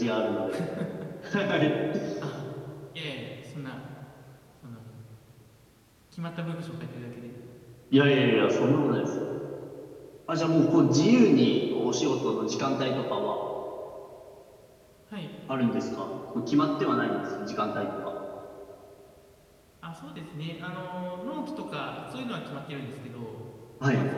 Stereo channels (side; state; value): both; identical; correlation 1.00